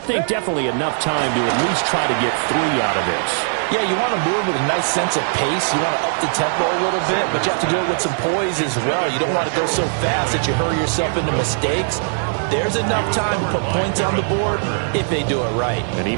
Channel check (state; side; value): silent; left; digital silence